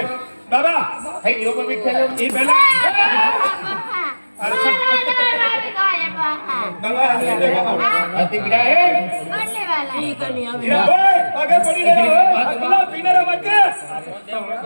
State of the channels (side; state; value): both; inverted; correlation -1.00